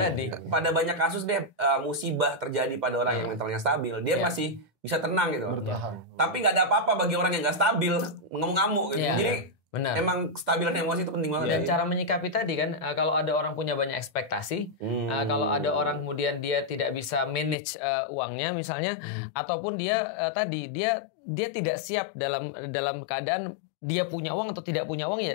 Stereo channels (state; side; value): drops out; right; at 17.6 s